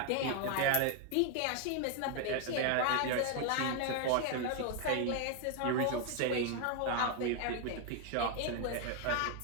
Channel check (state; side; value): different; both; correlation 0.01